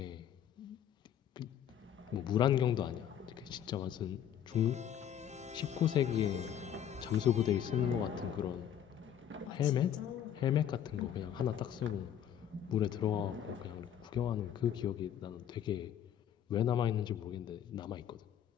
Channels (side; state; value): right; quieter; 9.7 dB